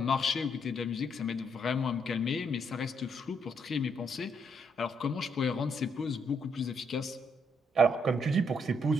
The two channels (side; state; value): both; normal; correlation 0.74